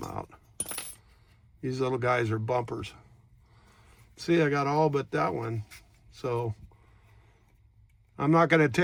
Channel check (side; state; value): both; identical; correlation 1.00